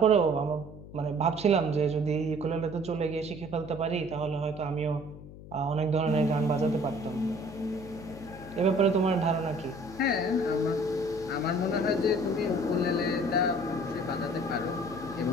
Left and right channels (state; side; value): noise; left; hum, 16 dB below the sound